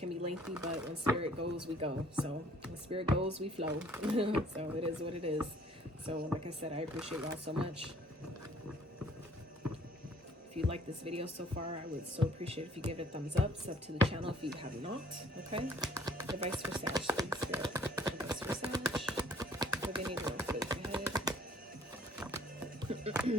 be lengthy, but when Spirit goes, we go. So when Spirit goes, we flow. So it is what it is. So like I said, I appreciate y'all so much. If you like this video so far, I would so appreciate if you give it a thumbs up. Sub to the channel if you have not. Okay? Advice for Sag, please, Spirit. Advice for Sag. What they need to work with ahead.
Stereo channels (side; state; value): both; normal; correlation 0.57